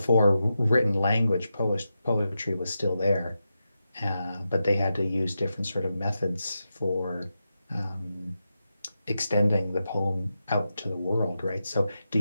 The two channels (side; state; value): both; inverted; correlation -0.88